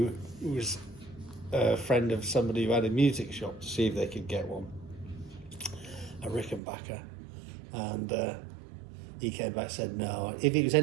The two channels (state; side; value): drops out; left; at 6.6 s